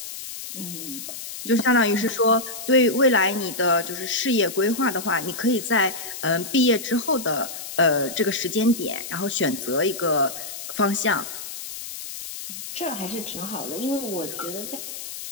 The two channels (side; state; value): left; noise; hiss, 9 dB below the sound